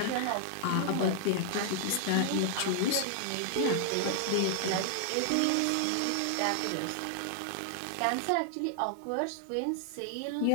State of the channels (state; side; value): different; both; correlation -0.01